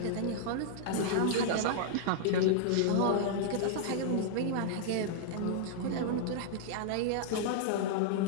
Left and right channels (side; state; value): both; different; correlation -0.01